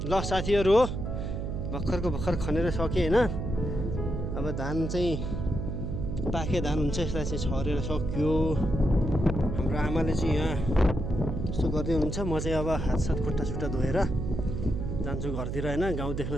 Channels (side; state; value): right; noise; hum, 3 dB below the sound